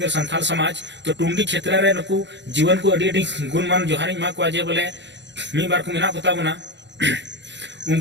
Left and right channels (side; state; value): left; late; 0.52 ms